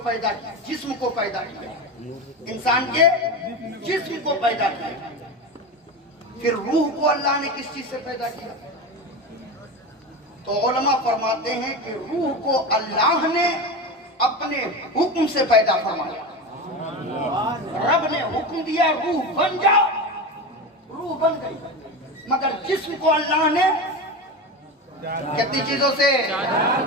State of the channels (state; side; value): normal; both; correlation 0.23